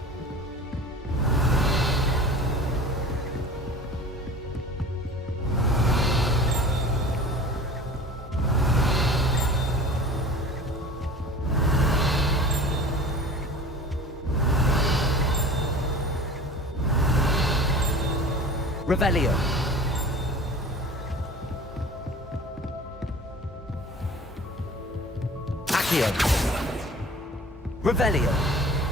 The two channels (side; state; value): both; normal; correlation 0.41